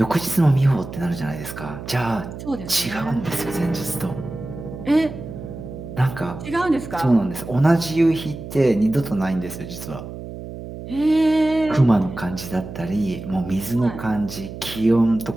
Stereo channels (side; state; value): right; noise; hum, 11 dB below the sound